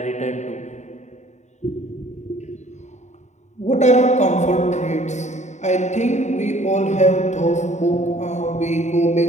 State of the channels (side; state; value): right; late; 0.34 ms